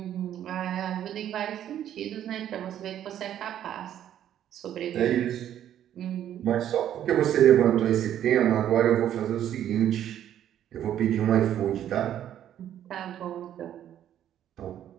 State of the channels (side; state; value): left; quieter; 10.8 dB